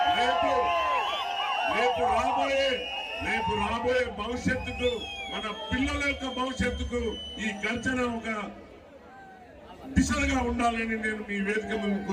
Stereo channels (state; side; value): identical; both; correlation 1.00